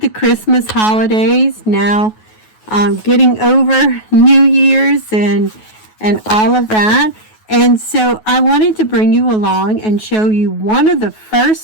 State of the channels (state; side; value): late; right; 9.3 ms